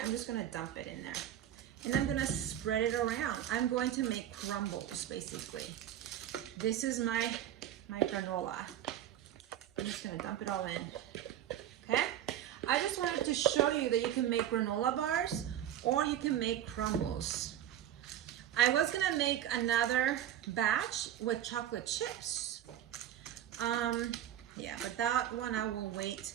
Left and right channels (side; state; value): left; quieter; 11.3 dB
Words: gonna dump it in there. And I'm gonna spread it around. I'm going to make crumbles, basically. This is my granola. I'm just gonna dump it all in, okay? I just wanted to show you that you can make granola bars or you can make crumbles. I was gonna make another batch with chocolate chips. Yeah, but that one I will wait.